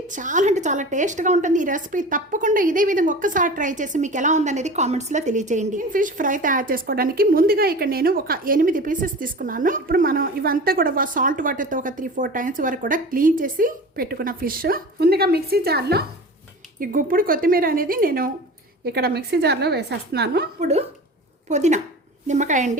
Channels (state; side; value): normal; both; correlation 0.35